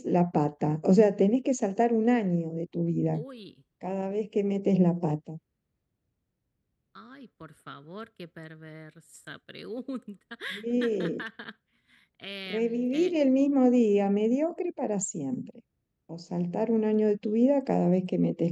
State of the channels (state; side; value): identical; both; correlation 1.00